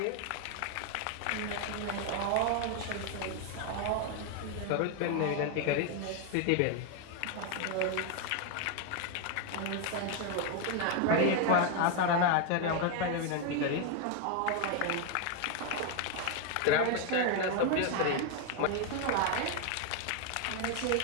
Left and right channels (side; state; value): both; different; correlation 0.01